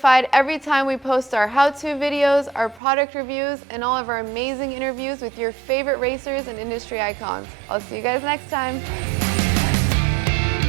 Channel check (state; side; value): drops out; left; at 2.8 s